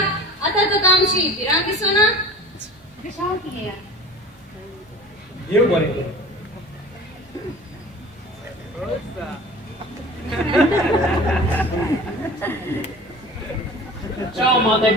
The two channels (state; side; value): normal; both; correlation 0.41